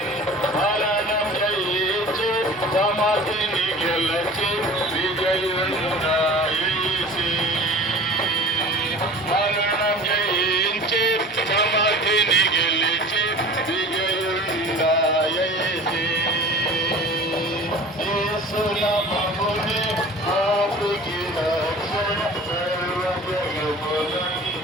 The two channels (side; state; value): both; normal; correlation 0.41